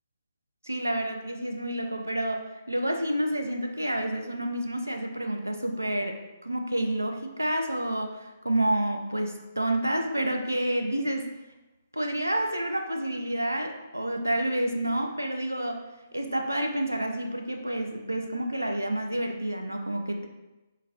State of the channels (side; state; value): both; inverted; correlation -0.91